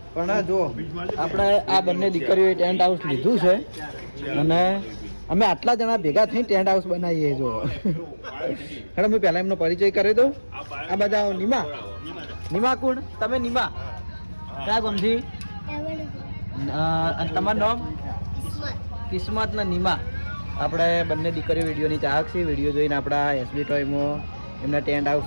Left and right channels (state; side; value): inverted; both; correlation -1.00